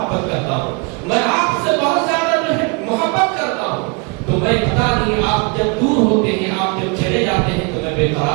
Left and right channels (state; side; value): quieter; left; 32.2 dB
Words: کرتا ہوں، میں آپ سے بہت زیادہ جو ہے محبت کرتا ہوں، تو میں پتا نہیں آپ جب دور ہوتے ہیں، آپ جب چلے جاتے ہیں تو میں بے